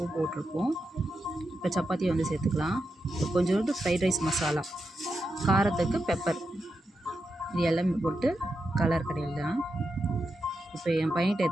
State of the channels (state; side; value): normal; both; correlation 0.87